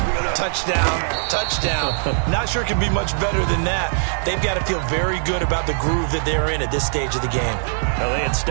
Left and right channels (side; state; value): left; silent; digital silence